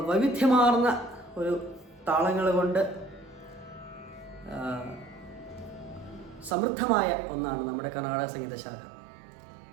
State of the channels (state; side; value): drops out; left; at 6.6 s